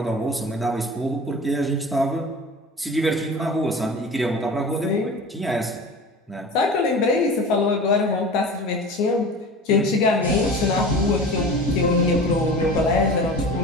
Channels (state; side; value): normal; both; correlation 0.36